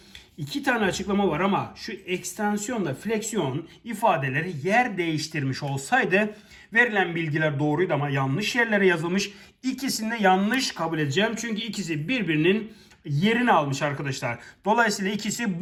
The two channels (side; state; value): both; identical; correlation 1.00